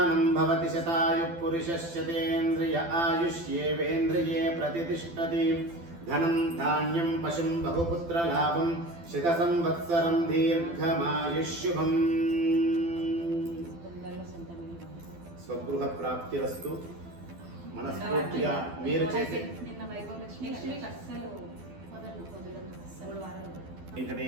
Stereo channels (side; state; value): left; late; 12 ms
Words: भवति शतायुः पुरुषस्यतेन्द्रिय आयुष्येवेन्द्रिये प्रतिष्ठति। धनं धान्यं पशुं बहुपुत्रलाभं शतसंवत्सरं दीर्घमायुष्युभम्। స్వగృహ ప్రాప్తిరస్తు। మనస్ఫూర్తిగా మీరు చేసే